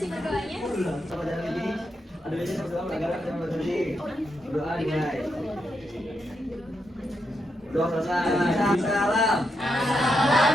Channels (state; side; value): normal; both; correlation 0.83